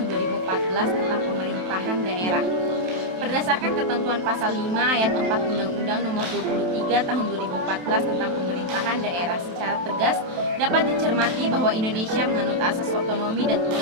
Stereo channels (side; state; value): left; late; 27 ms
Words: 2014 tentang Pemerintahan Daerah. Berdasarkan ketentuan pasal 5 ayat 4 Undang-Undang Nomor 23 Tahun 2014 tentang Pemerintahan Daerah, secara tegas dapat dicermati bahwa Indonesia menganut asas otonomi dan